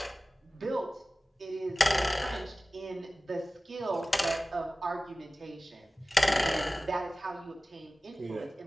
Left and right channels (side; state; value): both; normal; correlation 0.97